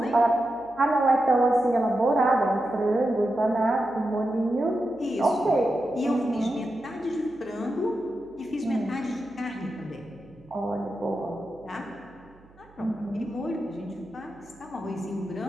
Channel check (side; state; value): right; noise; hum, 27 dB below the sound